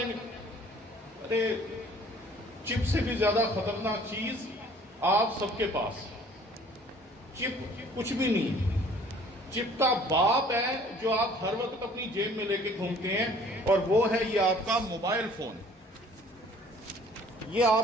گے۔ ارے چپ سے بھی زیادہ خطرناک چیز آپ سب کے پاس، چپ کچھ بھی نہیں، چپ کا باپ ہے جو آپ ہر وقت اپنی جیب میں لے کے گھومتے ہیں، اور وہ ہے یہ آپ کا موبائل فون۔ یہ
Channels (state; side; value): normal; both; correlation 0.54